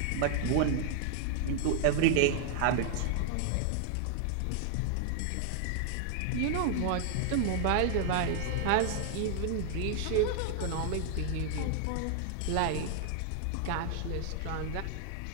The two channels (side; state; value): both; different; correlation 0.00